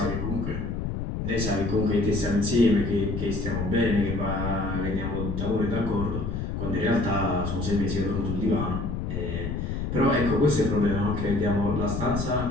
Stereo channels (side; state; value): left; noise; rumble, 3 dB below the sound